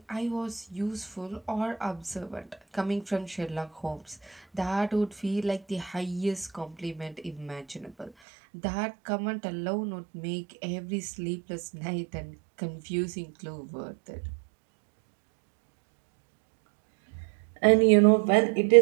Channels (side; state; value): left; drops out; at 8.1 s